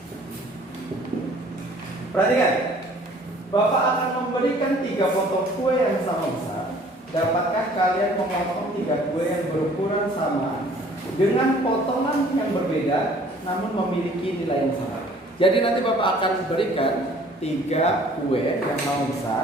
Perhatikan, Bapak akan memberikan 3 potong kue yang sama besar. Dapatkah kalian memotong 3 kue yang berukuran sama dengan potongan yang berbeda namun memiliki nilai yang sama? Jadi nanti Bapak akan berikan 3 kue yang sama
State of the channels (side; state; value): both; normal; correlation 0.54